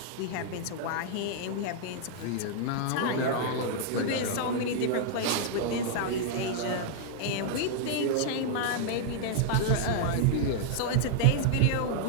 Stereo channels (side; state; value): both; different; correlation -0.01